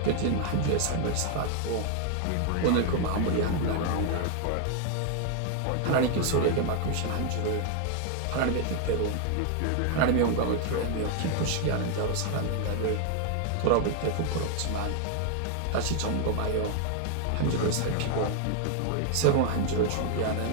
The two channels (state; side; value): different; both; correlation 0.00